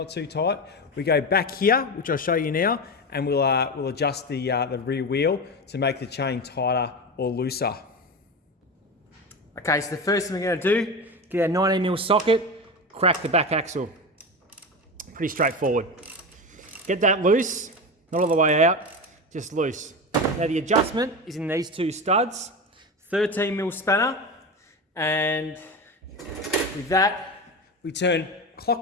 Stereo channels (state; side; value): normal; both; correlation 0.22